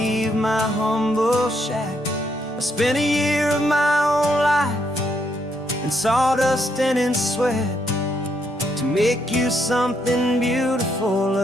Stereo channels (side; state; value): both; normal; correlation 0.76